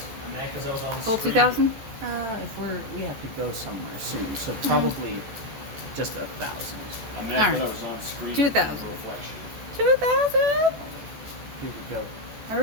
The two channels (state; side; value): late; left; 14 ms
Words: Because I was on Full screen. 2,000? If we have to go somewhere soon, so probably just 1,000. I'm Alright. mad that I was on screen. 2,000. Reflection. 2,000? Here we go.